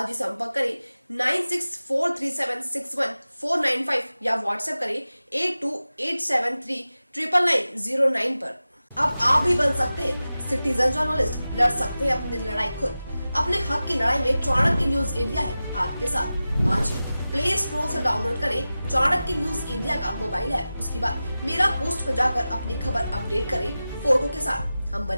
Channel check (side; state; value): both; inverted; correlation -0.95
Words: ही संपर्क करें 9643761495 या व्हाट्सएप करें 8287399909 पर। अब आप भी बन सकते हैं सिटीजन जर्नलिस्ट, लड़ सकते हैं अपनी लड़ाई खुद। अपने हक की लड़ाई में चाणक्य न्यूज इंडिया है आपके साथ। आज ही प्ले स्टोर से डाउनलोड करें चाणक्य न्यूज इंडिया का मोबाइल ऐप। उसके बाद मेरा पोस्ट पर जाकर अपनी खबर अपडेट करें फोटो के साथ। हम